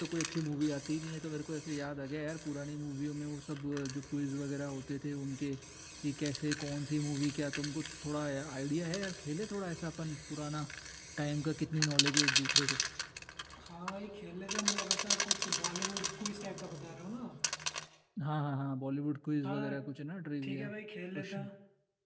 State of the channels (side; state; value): both; identical; correlation 1.00